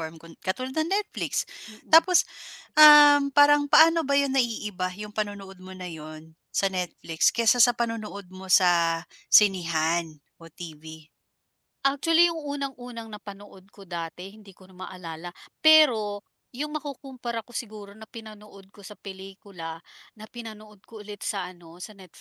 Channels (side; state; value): both; identical; correlation 1.00